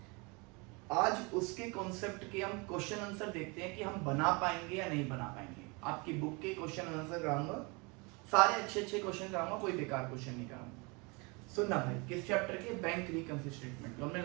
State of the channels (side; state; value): left; quieter; 29.0 dB